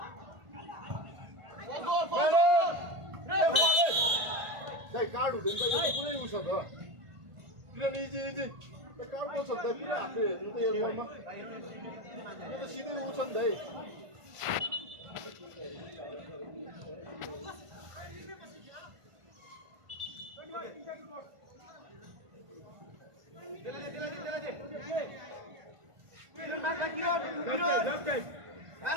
card हुँदैन त कुनै उस त किन easy card पो छ त पुरा हातले हेर्नु त एयरपोर्टमा त सिधै उस नि भाइ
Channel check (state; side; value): late; left; 1.5 ms